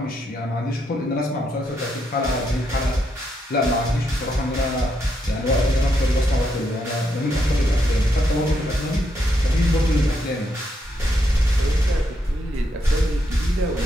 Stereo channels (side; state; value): both; normal; correlation 0.79